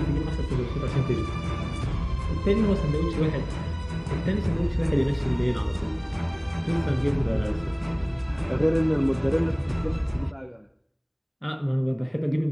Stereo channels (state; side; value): identical; both; correlation 1.00